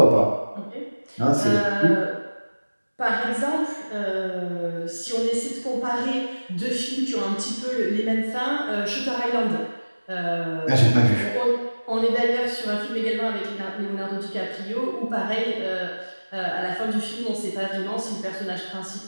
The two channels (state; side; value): inverted; both; correlation -1.00